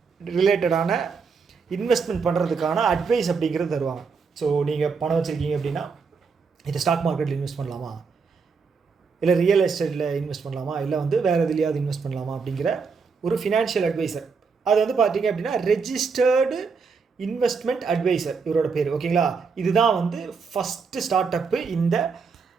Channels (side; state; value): left; quieter; 5.2 dB